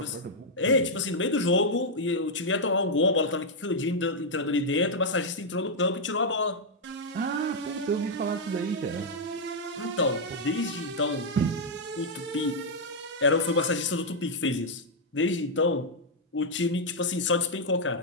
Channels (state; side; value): normal; both; correlation -0.03